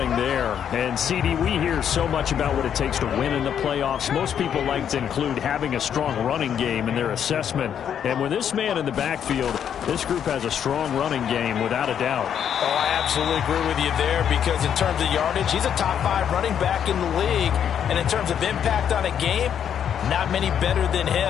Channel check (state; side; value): quieter; right; 8.8 dB